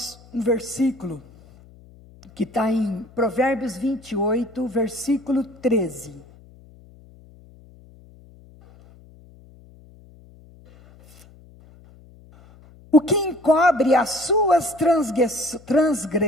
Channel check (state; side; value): noise; left; hum, 24 dB below the sound